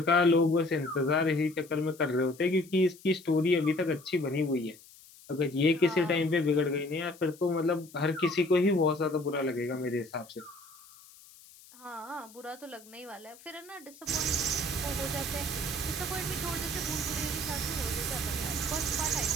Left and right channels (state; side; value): noise; left; hiss, 23 dB below the sound